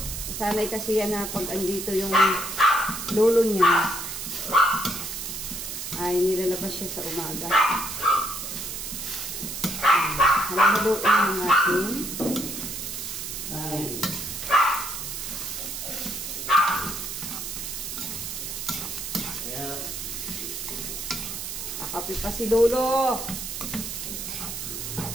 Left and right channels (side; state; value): right; noise; hiss, 6 dB below the sound